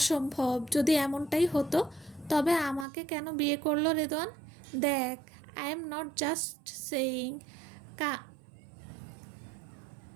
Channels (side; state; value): left; drops out; at 2.9 s